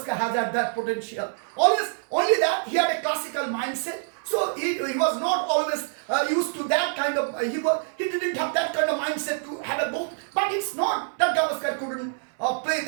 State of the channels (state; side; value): silent; left; 61 dB below the other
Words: has had that potential. Only that he had a classical mindset. So he was not always used to that kind of. He didn't have that kind of mindset to have a goal. But it's not that Gavaskar couldn't play